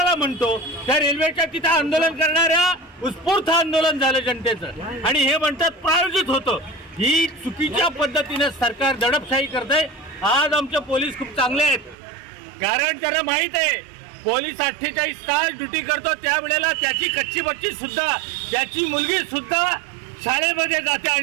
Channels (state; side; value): drops out; left; at 12.0 s